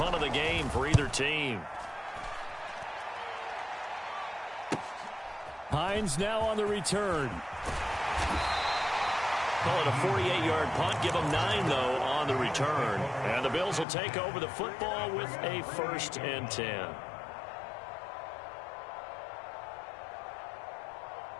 of the game for either team. Hines now on the return. Call it a 48-yard punt. Give them 9, though, on the return. And the Bills will take over the football with a 1st and 10.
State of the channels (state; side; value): drops out; right; at 13.9 s